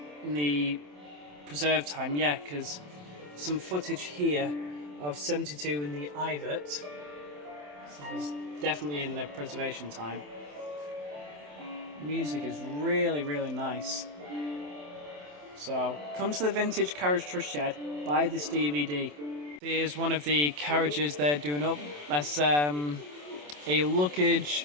the preserve time, yeah, because some footage here of 72 in the Ivert. So it's definitely in the preservation time. Music is really, really nice. So come to the Vintage Carriage Trust shed, buy this DVD. Here's one of the carriages they're doing up. That's a luggage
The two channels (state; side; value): late; left; 27 ms